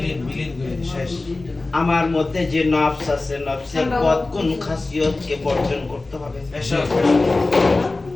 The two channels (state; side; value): quieter; right; 3.3 dB